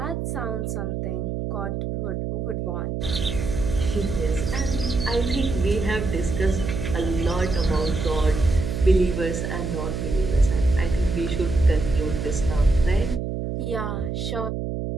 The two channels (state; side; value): noise; right; hum, 3 dB below the sound